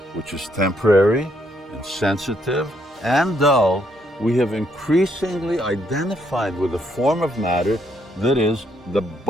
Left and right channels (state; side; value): normal; both; correlation 0.73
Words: which is temporary, insensitive, and dull, we have increasingly identified with a form of matter that is the